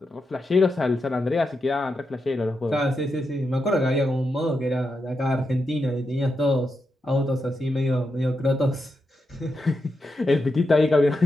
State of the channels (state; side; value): normal; both; correlation 0.86